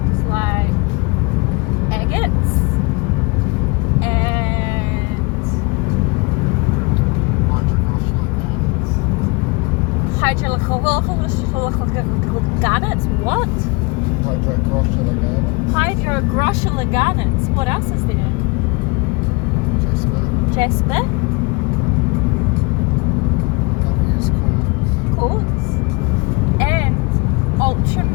like agates and garnets. What? Hydrogroshula garnets. What else is there? Jasper. Obvious Quartz. And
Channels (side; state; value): right; quieter; 27.4 dB